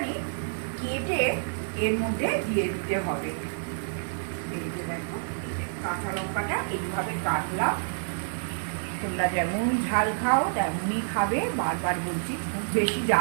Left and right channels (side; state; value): left; silent; digital silence